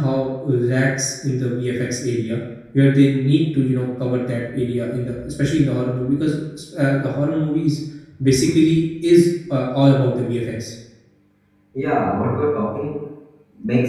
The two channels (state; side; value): identical; both; correlation 1.00